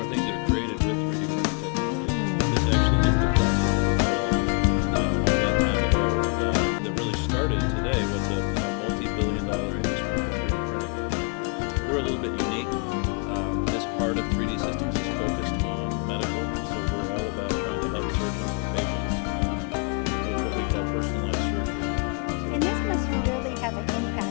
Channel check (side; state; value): right; quieter; 39.5 dB